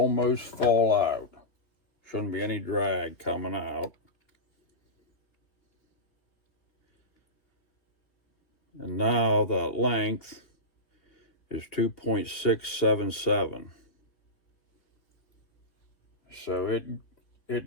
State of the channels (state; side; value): late; right; 2.8 ms